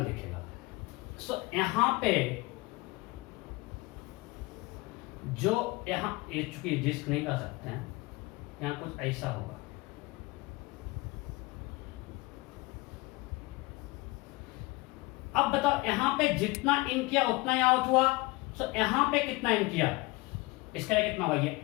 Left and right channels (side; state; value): right; quieter; 23.1 dB